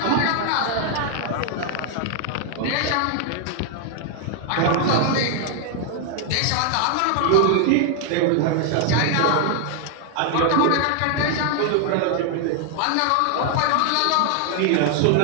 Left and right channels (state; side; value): different; both; correlation 0.00